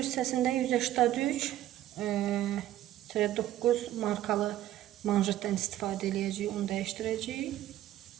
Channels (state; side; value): quieter; left; 13.4 dB